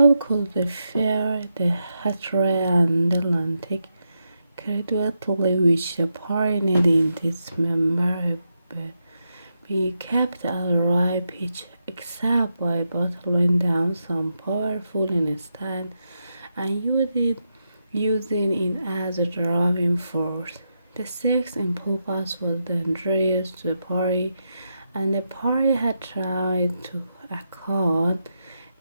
could the fair, the hatred and the Atlantic gradually which the pioneered in this memorable be kept at a right pitch except by bottling down some powerful instant and using it as a driving force. The sex impulse was dangerous to the party, and the party had tried to accord.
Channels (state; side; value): inverted; both; correlation -0.85